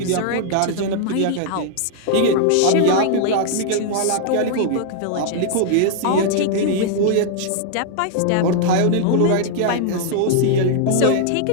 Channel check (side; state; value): both; different; correlation -0.01